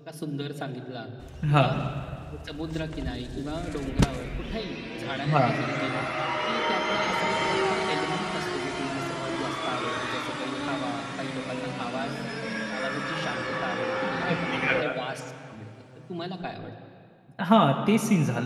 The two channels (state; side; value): identical; both; correlation 1.00